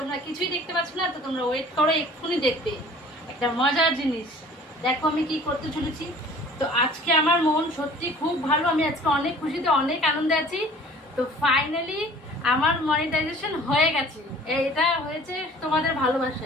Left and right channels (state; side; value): normal; both; correlation 0.49